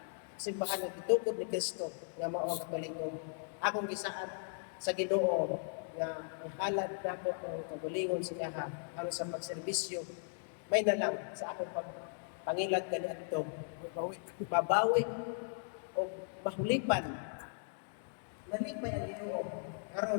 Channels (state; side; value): silent; right; digital silence